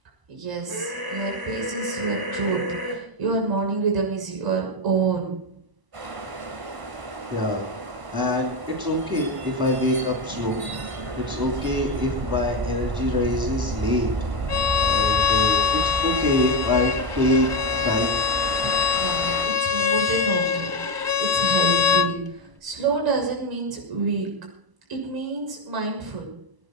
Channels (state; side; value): late; left; 1.0 ms